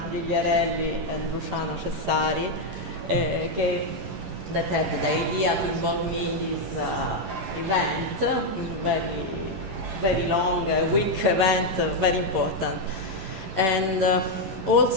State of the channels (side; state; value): left; late; 11 ms